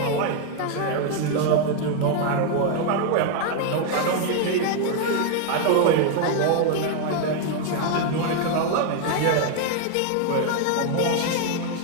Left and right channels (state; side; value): different; both; correlation 0.00